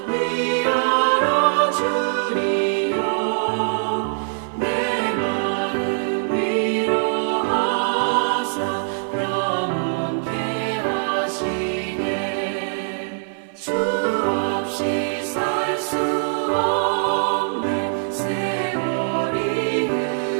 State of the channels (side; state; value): left; silent; 56 dB below the other